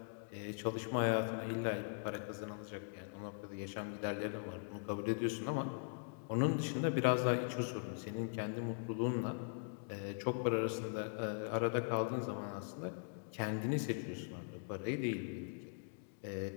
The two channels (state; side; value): silent; right; digital silence